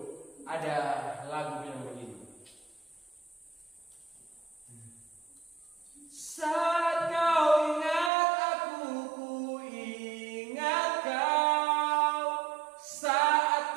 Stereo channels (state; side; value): drops out; left; at 8.1 s